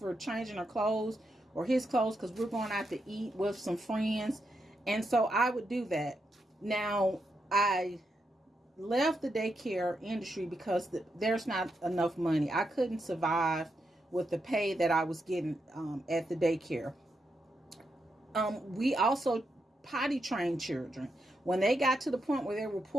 changing her clothes or his clothes, because we're going out to eat with some friends. And so I would do that. Now, I left the daycare industry because there's not enough money. I couldn't survive with the pay that I was getting at the daycare. We also potty trained children. When they got to the point where they were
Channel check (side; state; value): both; normal; correlation 0.83